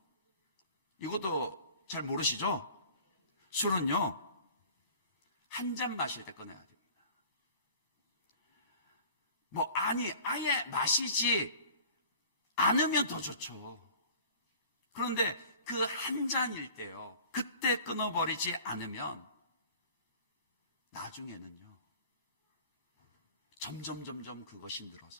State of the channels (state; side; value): inverted; both; correlation -0.45